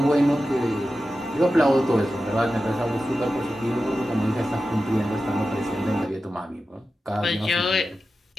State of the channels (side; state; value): both; normal; correlation 0.92